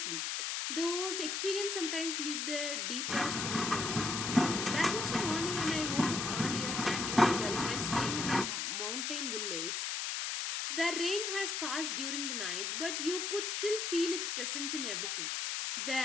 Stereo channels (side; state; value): left; noise; hiss, 1 dB below the sound